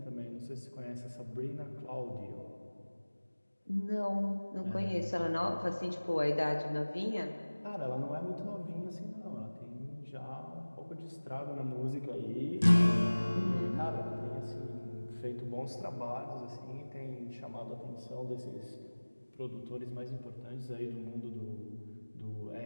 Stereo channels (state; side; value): inverted; both; correlation -1.00